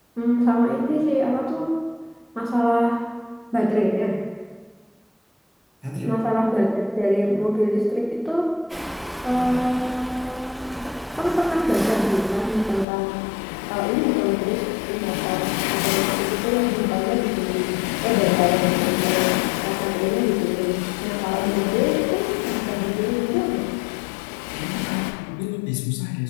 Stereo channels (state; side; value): drops out; right; at 12.9 s